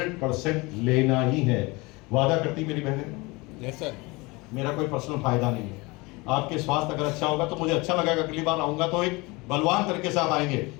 लेना ही है। वादा करती मेरी बहनें? Yes sir. मेरा कोई पर्सनल फायदा नहीं है, आपके स्वास्थ्य अगर अच्छा होगा तो मुझे अच्छा लगेगा, अगली बार आऊंगा तो एक बलवान तरीके से आप आएंगे।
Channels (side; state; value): right; quieter; 24.6 dB